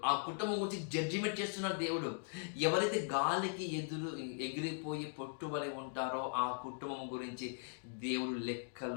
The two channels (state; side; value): silent; right; digital silence